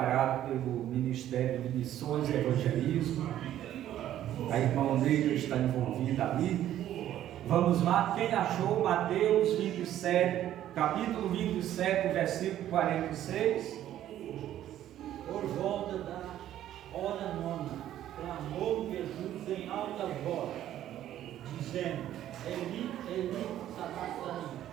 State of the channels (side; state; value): left; quieter; 12.1 dB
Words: pelo Ministério de Missões e Evangelismo. A irmã Neila está envolvida ali. Vamos lá, quem achou Mateus 27, capítulo 27, versículo 46? Por volta da hora nona, clamou Jesus em alta voz, dizendo: Eli, Eli, sabachthani,